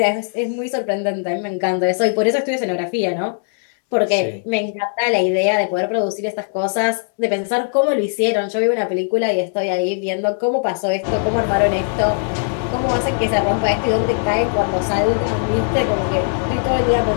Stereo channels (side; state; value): right; silent; 66 dB below the other